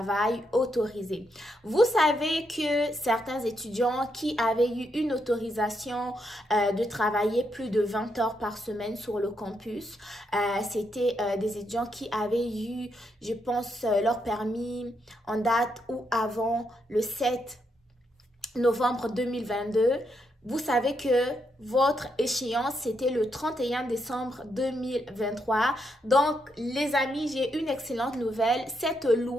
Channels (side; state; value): both; normal; correlation 0.80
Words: autorisées. Vous savez que certains étudiants qui avaient eu une autorisation de travailler plus de 20 heures par semaine sur le campus, c'était des étudiants qui avaient eu, je pense, leur permis en date ou avant le 7 novembre 2022. Vous savez que votre échéance, c'était le 31 décembre 2023. Donc, les amis, j'ai une excellente nouvelle. Cette